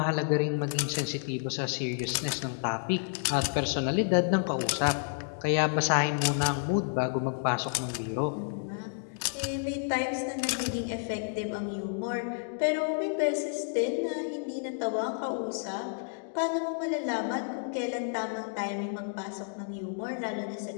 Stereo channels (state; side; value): silent; right; digital silence